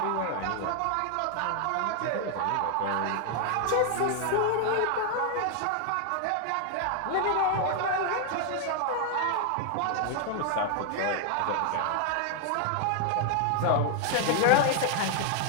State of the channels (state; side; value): different; both; correlation 0.00